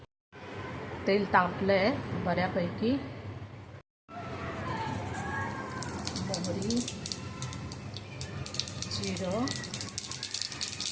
तेल तापलं आहे बऱ्यापैकी। मोहरी, जिरं,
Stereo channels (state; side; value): identical; both; correlation 1.00